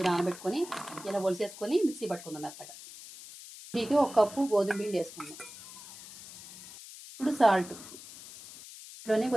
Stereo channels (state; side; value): noise; left; hiss, 16 dB below the sound